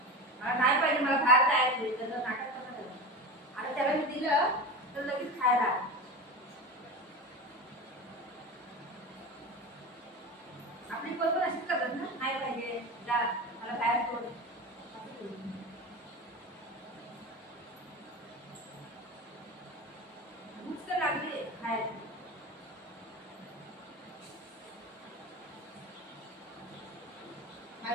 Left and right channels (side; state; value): both; normal; correlation 0.26